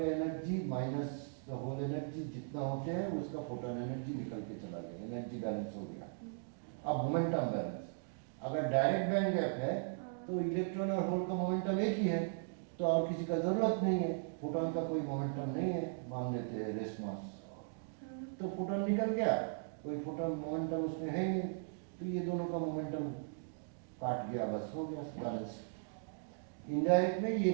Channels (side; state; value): left; silent; digital silence